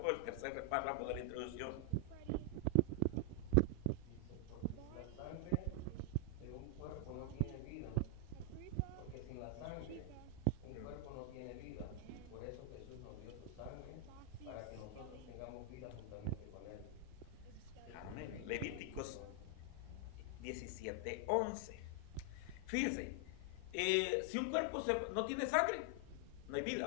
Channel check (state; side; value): different; both; correlation 0.00